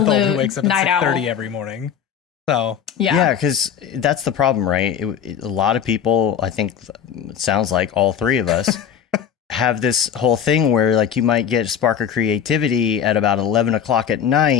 8-month-old who wakes up at night 6:30 owl. every morning. So yeah, because that's the problem, right? A lot of people, I think, it sounds like all three of us, have this whole thing where like you might get a spark of creativity at about 11 o'clock at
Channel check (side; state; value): right; quieter; 8.4 dB